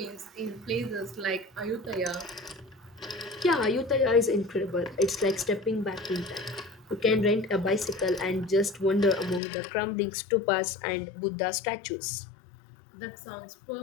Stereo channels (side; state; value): right; drops out; at 9.4 s